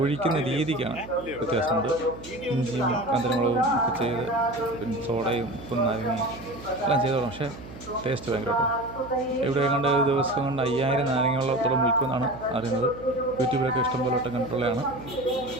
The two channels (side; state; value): right; noise; hum, 15 dB below the sound